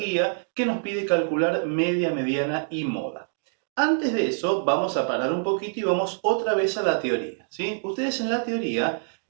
que nos pide calcular media, mediana y moda. Antes de eso vamos a parar un poquito y vamos otra vez a la teoría, ¿sí? Ustedes en la teoría,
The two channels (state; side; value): silent; left; digital silence